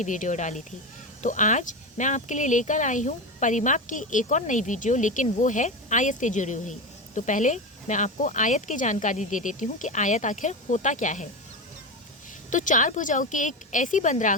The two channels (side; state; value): both; normal; correlation 0.19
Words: वीडियो डाली थी। तो आज मैं आपके लिए लेकर आई हूँ परिमाप की एक और नई वीडियो, लेकिन वो है आयत से जुड़ी हुई। तो पहले मैं आपको आयत की जानकारी दे देती हूँ कि आयत आखिर होता क्या है। तो चार भुजाओं की एक ऐसी